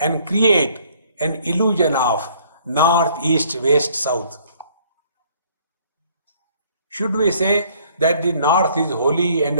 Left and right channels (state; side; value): inverted; both; correlation -0.60